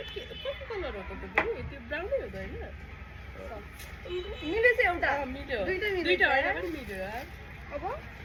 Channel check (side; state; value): both; identical; correlation 1.00